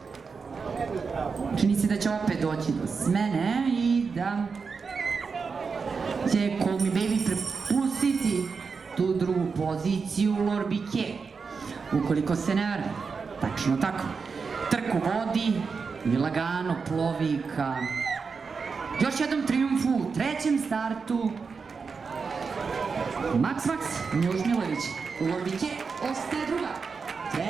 čini se da će opet doći do smene i da će Call Me Baby prepustiti tu drugu poziciju Lorbike, ukoliko se ne varam. Tačno tako. Trku vodi i lagano plovi ka još jednom trijumfu u trećem startu. Max, Miloš Milović. Lorbike ostaje druga.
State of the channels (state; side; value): quieter; left; 5.2 dB